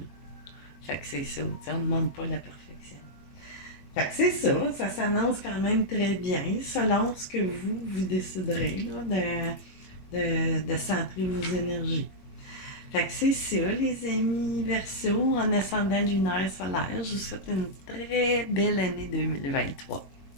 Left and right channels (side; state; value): right; late; 21 ms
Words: Fait que c'est ça. T'sais, on ne demande pas la perfection. Fait que c'est ça. Ça s'annonce quand même très bien selon ce que vous déciderez là, de centrer vos énergies. Fait que c'est ça, les amis Verseau, en ascendant lunaire solaire. Je vous souhaite une très belle année 2023.